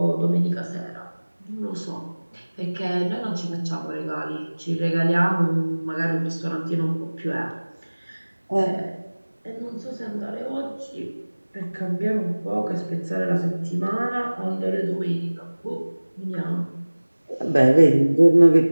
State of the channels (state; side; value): inverted; both; correlation -1.00